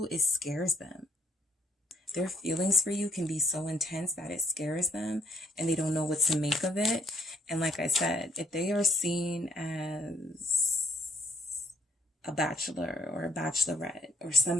it scares them. Their feelings for you can be so intense that it scares them and they don't know what to make of it. And like I said, if they are seen as a bachelor or a bachelorette or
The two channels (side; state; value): both; normal; correlation 0.64